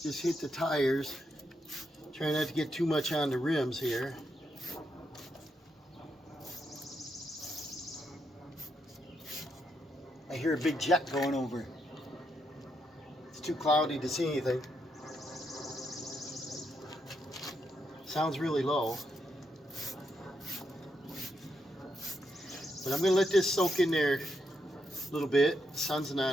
just hit the tires. Try not to get too much on the rims here. I hear a big jet going over. It's too cloudy to see anything. Sounds really low. But I'm going to let this soak in there a little bit. The sun's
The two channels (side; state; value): both; normal; correlation 0.81